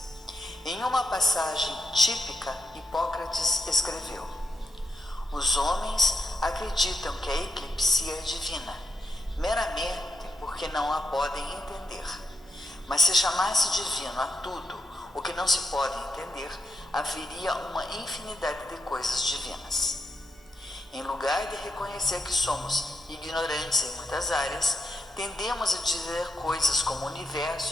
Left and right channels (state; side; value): normal; both; correlation 0.83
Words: Em uma passagem típica, Hipócrates escreveu: os homens acreditam que a eclipsia é divina, meramente porque não a podem entender. Mas se chamasse divino a tudo o que não se pode entender, haveria uma infinidade de coisas divinas. Em lugar de reconhecer que somos ignorantes em muitas áreas, tendemos a dizer coisas como o